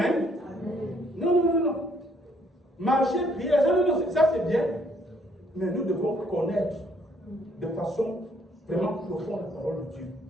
Non. Marcher, prier, ça c'est bien. Mais nous devons connaître de façon vraiment profonde la parole de Dieu.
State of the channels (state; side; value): normal; both; correlation 0.66